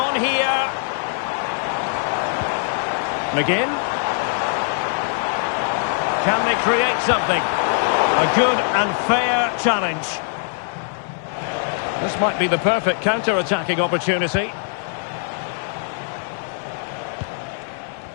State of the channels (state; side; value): silent; right; 64 dB below the other